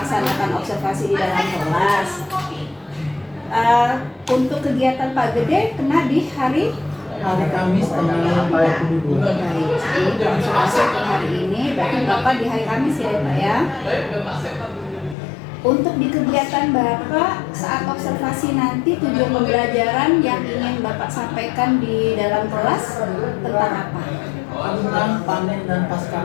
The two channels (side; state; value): right; drops out; at 15.2 s